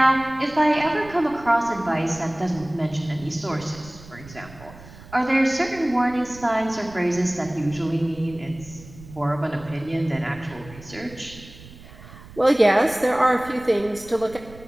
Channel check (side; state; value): right; noise; rumble, 19 dB below the sound